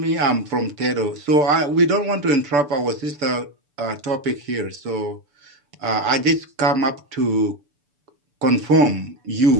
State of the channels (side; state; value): left; late; 6.9 ms